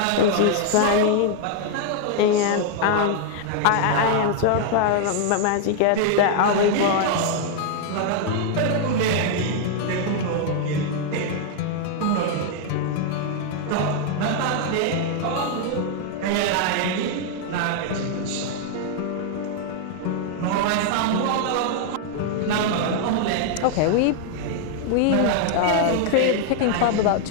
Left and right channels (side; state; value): both; different; correlation 0.00